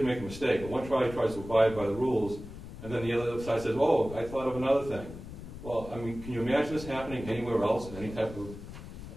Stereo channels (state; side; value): noise; left; rumble, 12 dB below the sound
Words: make a mistake, but one side tries to abide by the rules, and then the other side says, oh, I thought of another thing. Well, I mean, can you imagine this happening anywhere else in any type of